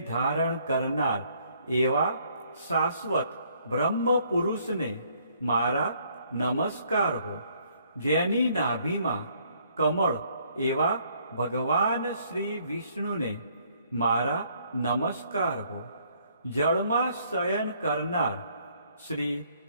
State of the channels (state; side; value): inverted; both; correlation -0.65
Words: ધારણ કરનાર એવા શાશ્વત બ્રહ્મ પુરુષને મારા નમસ્કાર હો. જેની નાભીમાં કમળ એવા ભગવાન શ્રી વિષ્ણુને મારા નમસ્કાર હો. જળમાં શયન કરનાર શ્રી